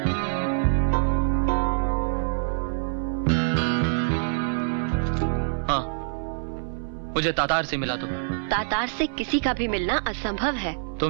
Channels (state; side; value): silent; left; 61 dB below the other